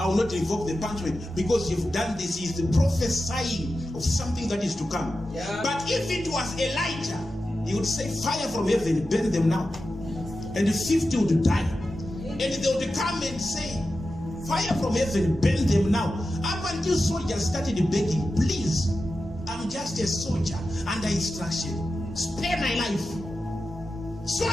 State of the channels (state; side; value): normal; both; correlation 0.91